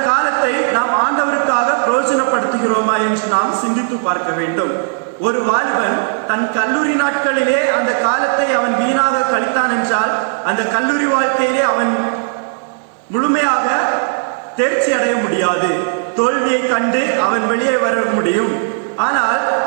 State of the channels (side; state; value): left; silent; 68 dB below the other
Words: காலத்தை நாம் ஆண்டவருக்காக பிரயோஜனப்படுத்துகிறோமா என்று நாம் சிந்தித்து பார்க்க வேண்டும். ஒரு வாலிபன் தன் கல்லூரி நாட்களிலே அந்த காலத்தை அவன் வீணாக கழித்தான் என்றால் அந்த கல்லூரி வாழ்க்கையிலே அவன் முழுமையாக தேர்ச்சி அடைய முடியாது. தோல்வியை கண்டு அவன் வெளியே வர முடியும். ஆனால்